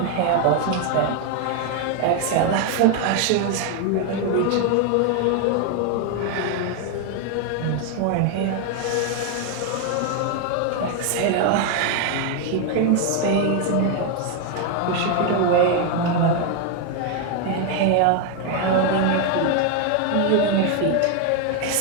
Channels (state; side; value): different; both; correlation 0.01